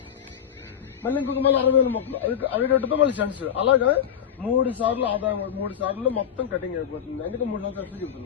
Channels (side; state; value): right; quieter; 8.9 dB